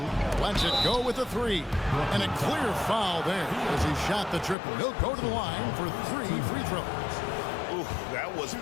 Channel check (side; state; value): right; drops out; at 4.5 s